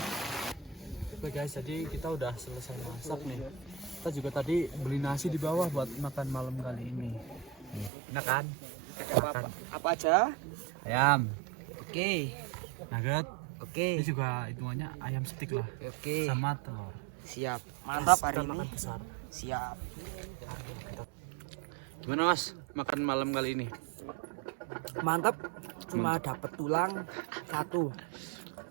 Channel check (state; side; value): drops out; left; at 7.9 s